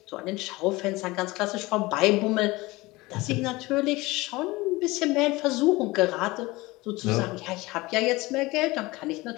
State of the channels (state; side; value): quieter; right; 21.3 dB